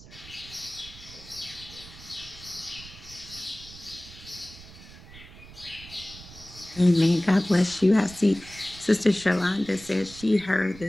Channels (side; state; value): right; noise; rumble, 18 dB below the sound